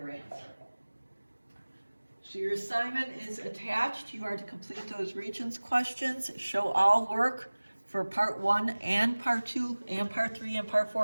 answer. So your assignment is attached. You are to complete those Regents questions, show all work for part 1 and part 2 and part 3 and part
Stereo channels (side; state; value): both; inverted; correlation -1.00